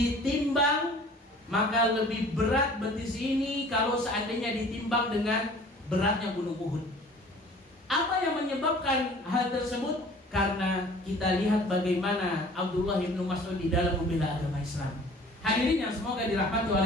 maka lebih berat betis ini kalau seandainya ditimbang dengan beratnya gunung Uhud. Apa yang menyebabkan hal tersebut? Karena kita lihat bagaimana Abdullah bin Mas'ud di dalam membela agama Islam. Hadirin yang semoga dirahmati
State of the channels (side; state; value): both; normal; correlation 0.49